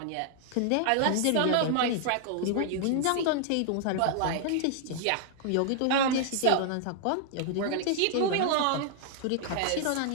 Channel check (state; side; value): different; both; correlation 0.00